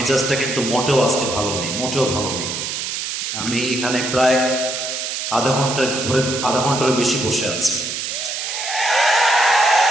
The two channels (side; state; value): right; noise; hiss, 4 dB below the sound